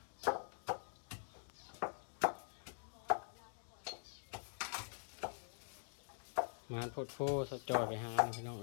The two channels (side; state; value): right; silent; digital silence